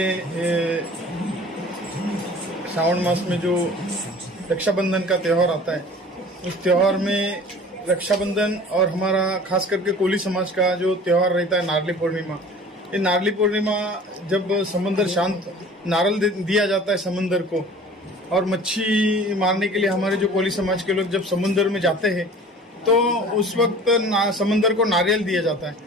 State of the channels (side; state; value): both; normal; correlation 0.45